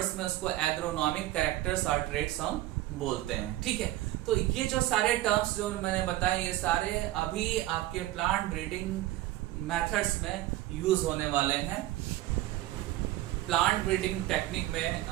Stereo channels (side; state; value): left; quieter; 16.0 dB